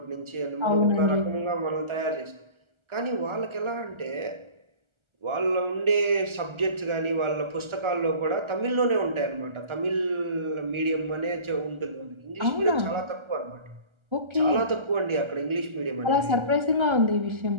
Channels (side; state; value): left; late; 1.3 ms